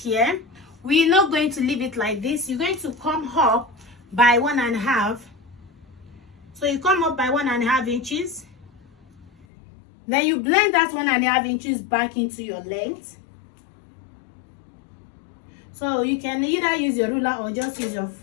We're not going to leave it like this. You're going to come up by 1.5. So you come up by 1.5 inches. Then you blend that 1.5 inches back into your length. So you can either use your ruler or just use your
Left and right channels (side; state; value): right; drops out; at 9.5 s